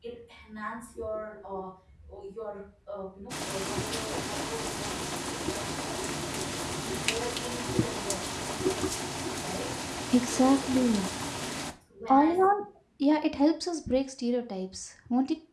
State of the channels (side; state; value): both; identical; correlation 1.00